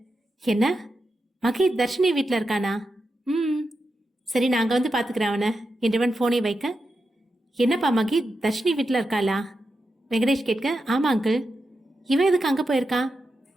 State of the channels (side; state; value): both; normal; correlation 0.88